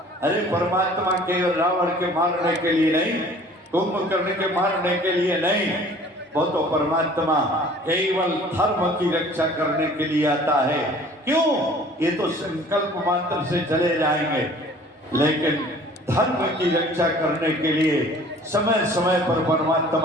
अरे परमात्मा केवल रावण के मारने के लिए नहीं, कुंभकर्ण के मारने के लिए नहीं, वो तो परमात्मा केवल धर्म की रक्षा करने के लिए आता है। क्यों? ये तो संकल्प मात्र से चले जाएंगे, लेकिन धर्म की रक्षा करने के लिए समय समय पर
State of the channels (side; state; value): both; normal; correlation 0.50